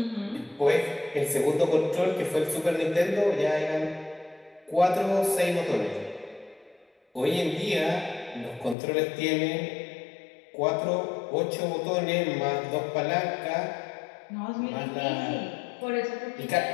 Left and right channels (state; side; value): drops out; right; at 8.8 s